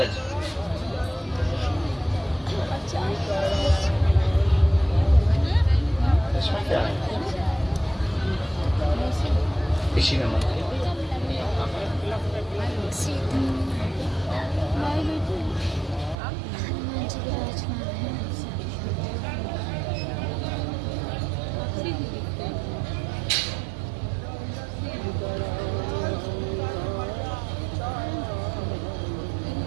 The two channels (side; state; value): left; drops out; at 16.2 s